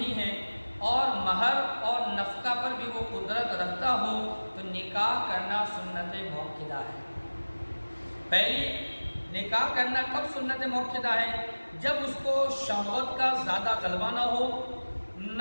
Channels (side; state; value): both; inverted; correlation -1.00